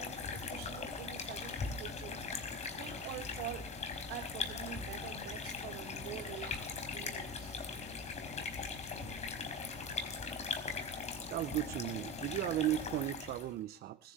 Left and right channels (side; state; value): both; normal; correlation 0.24